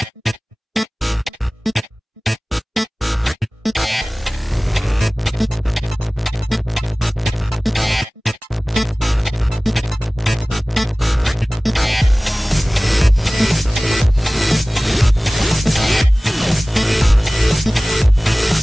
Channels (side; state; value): both; normal; correlation 0.98